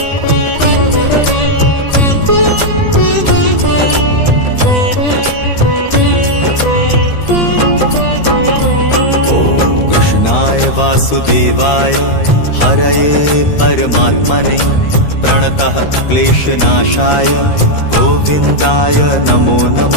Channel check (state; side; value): late; right; 13 ms